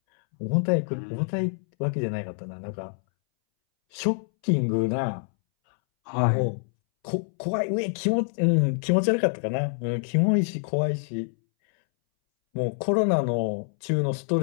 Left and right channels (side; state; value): right; silent; 61 dB below the other